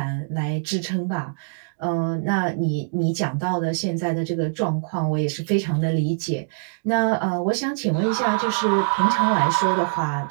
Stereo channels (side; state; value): left; silent; digital silence